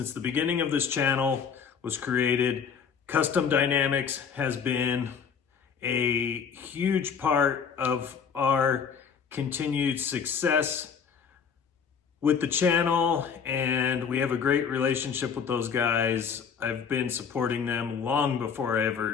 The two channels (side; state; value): right; quieter; 6.7 dB